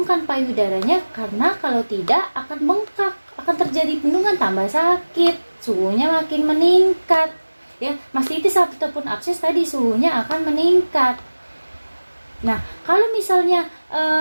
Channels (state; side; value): inverted; both; correlation -1.00